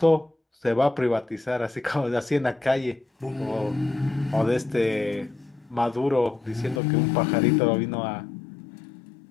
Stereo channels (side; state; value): right; drops out; at 6.8 s